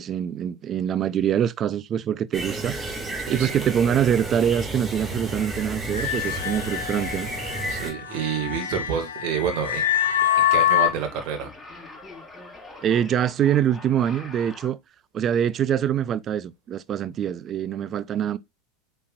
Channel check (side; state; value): left; quieter; 3.4 dB